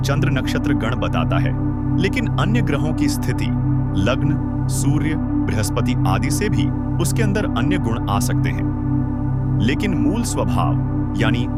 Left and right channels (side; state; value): both; identical; correlation 1.00